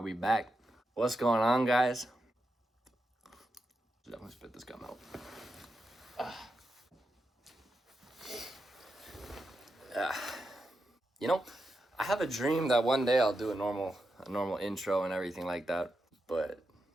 back? What's going on, guys? Definitely spit this gum out. You know, I have a dream that one day I'll do a normal intro and everything like that, but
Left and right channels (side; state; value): both; normal; correlation 0.87